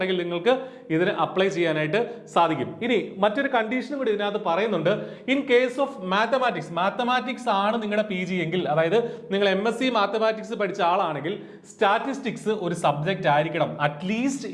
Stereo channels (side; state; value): both; identical; correlation 1.00